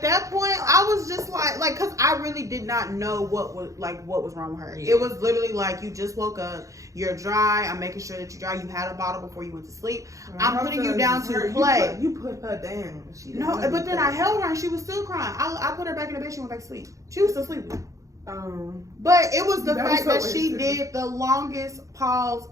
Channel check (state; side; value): late; left; 0.16 ms